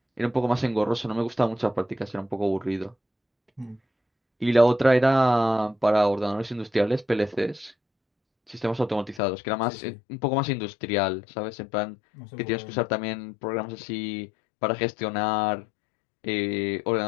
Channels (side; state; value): right; drops out; at 9.2 s